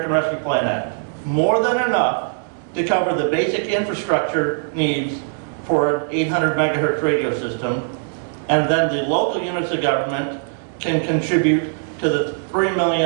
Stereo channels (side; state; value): left; silent; 65 dB below the other